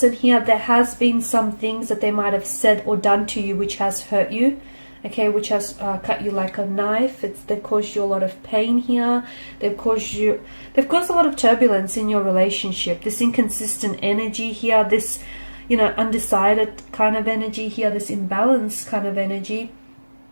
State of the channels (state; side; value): inverted; both; correlation -1.00